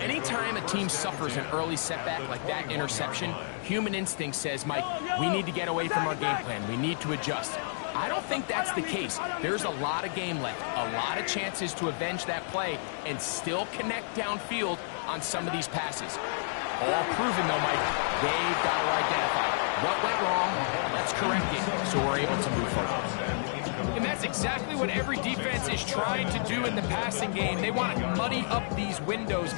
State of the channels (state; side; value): silent; right; digital silence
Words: a team suffers an early setback like that interception, human instinct says, Mike, we need to get away from our game plan. We need to adjust. I don't think that's the case. There's a lot of game left, a lot of chances to avenge that play and still connect downfield on some of these passes. All proven, though, Mike, they've got to identify what went wrong, let's correct it so we're able to move forward. And that's exactly what every defense is trying to do in the passing game. They want to muddy up these windows,